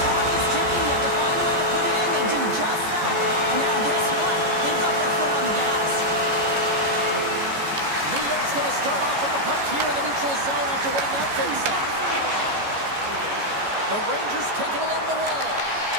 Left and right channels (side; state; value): left; late; 14 ms